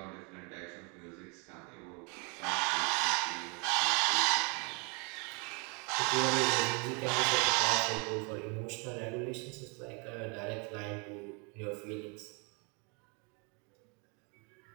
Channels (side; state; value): left; quieter; 33.0 dB